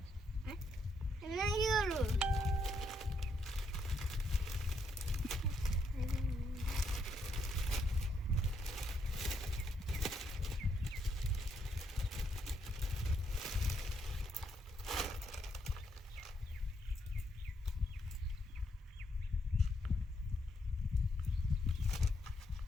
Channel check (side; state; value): both; normal; correlation 0.76